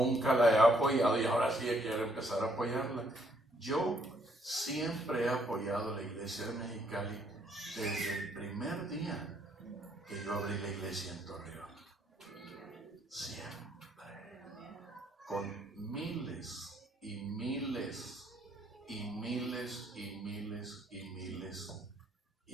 la he apoyado y ahora sí quiero empezar a apoyarla. Yo siempre he apoyado a la iglesia de Mexicali desde el primer día que yo abrí la iglesia en Torreón. Siempre. Con miles y miles y miles y miles y miles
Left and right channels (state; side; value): normal; both; correlation 0.69